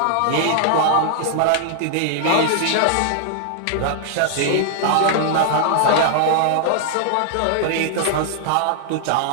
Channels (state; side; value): different; both; correlation -0.01